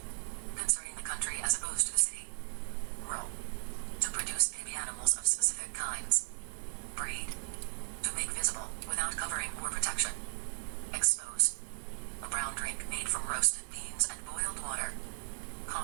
Concerning the country as opposed to the city. Rural. To produce baby animals of specific kinds. Breed. To make visible without covering or protection. Expose. A brown drink made from roasted beans and boiled water.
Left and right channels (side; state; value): left; silent; 54 dB below the other